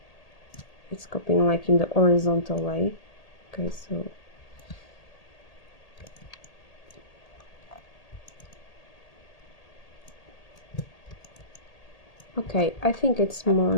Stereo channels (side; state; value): right; late; 1.8 ms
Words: It's copying like in the horizontal way. Okay, so okay, I think it's more